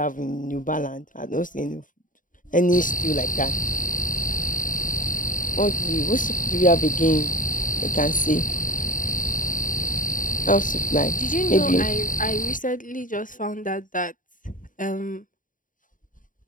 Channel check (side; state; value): right; late; 0.39 ms